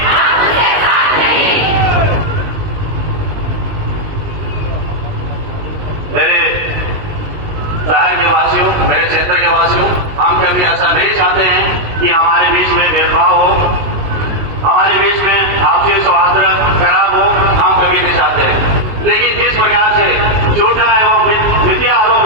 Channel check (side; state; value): left; late; 19 ms